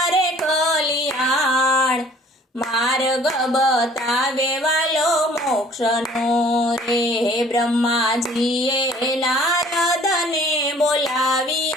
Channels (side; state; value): both; normal; correlation 0.53